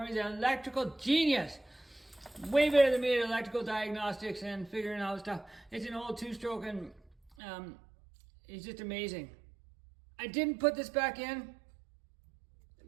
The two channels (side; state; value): left; drops out; at 7.3 s